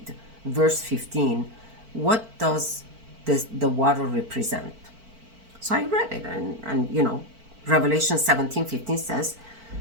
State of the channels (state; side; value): late; left; 4.5 ms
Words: verse 15? What does the water represent? So I read it, and Revelation 17:15 says,